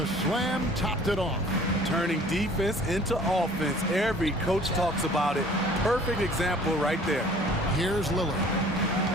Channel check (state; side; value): normal; both; correlation 0.51